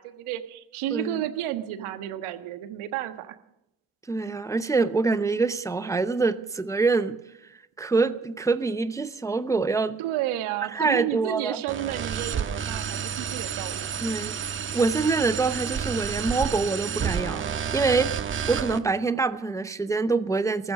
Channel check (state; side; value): quieter; left; 4.6 dB